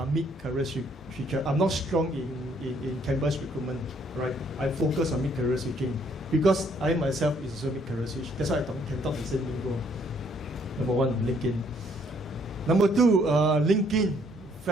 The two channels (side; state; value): both; normal; correlation 0.66